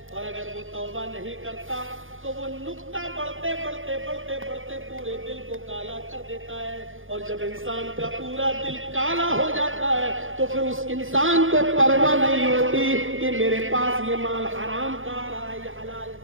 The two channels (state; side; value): late; left; 0.58 ms